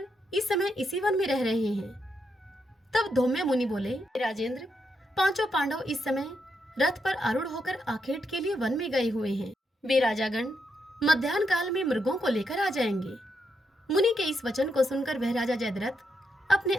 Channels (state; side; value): normal; both; correlation 0.81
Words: इस समय इसी वन में रह रहे हैं? तब धौम्य मुनि बोले, राजेंद्र, 5 पांडव इस समय रथ पर आरूढ़ होकर आखेट के लिए वन में गए हुए हैं। वे राजागण मध्याह्न काल में मृगों को लेकर आ जाएंगे। मुनि के इस वचन को सुनकर वह राजा जयद्रथ अपने